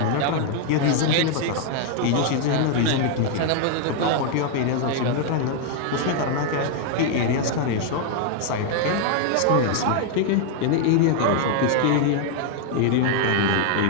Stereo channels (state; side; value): different; both; correlation 0.00